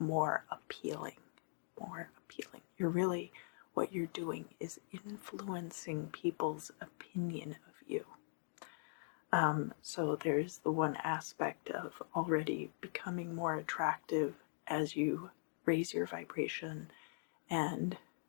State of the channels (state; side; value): silent; right; digital silence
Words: appealing. You're really, what you're doing is influencing people's opinion of you. So there's the one aspect of already becoming more attractive as you raise your vibration and